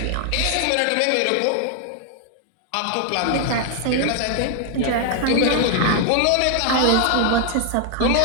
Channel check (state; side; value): different; both; correlation 0.00